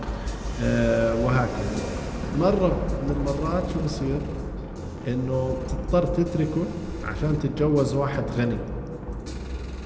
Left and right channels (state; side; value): identical; both; correlation 1.00